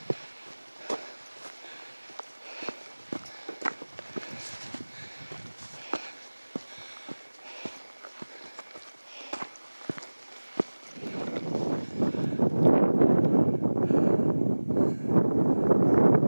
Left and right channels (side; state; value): both; inverted; correlation -1.00